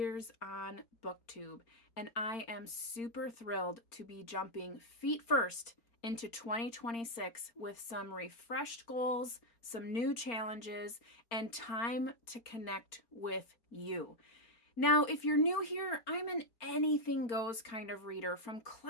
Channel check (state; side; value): late; right; 4.3 ms